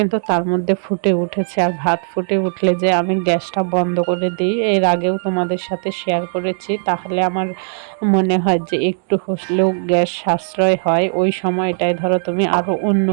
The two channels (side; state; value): left; silent; digital silence